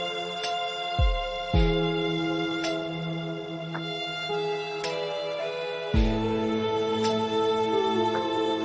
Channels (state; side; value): identical; both; correlation 1.00